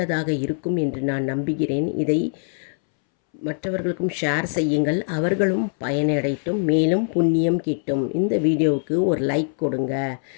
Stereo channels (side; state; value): right; silent; 64 dB below the other